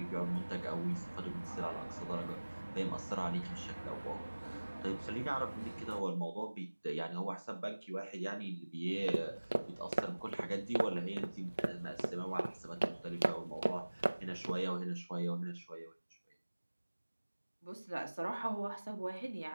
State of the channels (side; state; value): both; inverted; correlation -1.00